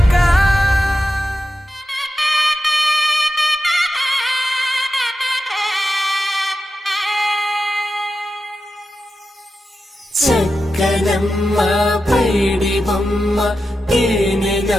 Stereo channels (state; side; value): normal; both; correlation 0.90